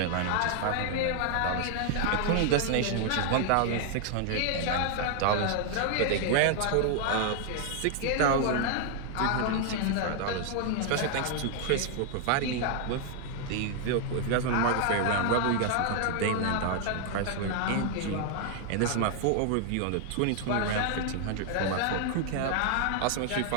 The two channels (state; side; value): different; both; correlation 0.00